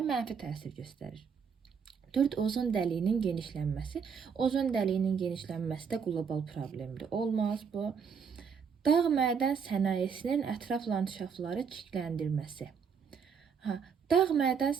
mənfi təsir göstərir. 4. Ozon dəliyinin genişlənməsi. Ozon dəliyinin genişlənməsi də qlobal problemdir. Olmaz bu. Dağ mədən sənayesinin ətraf landşafları çirkləndirməsi. Dağ mədən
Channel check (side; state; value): left; quieter; 6.4 dB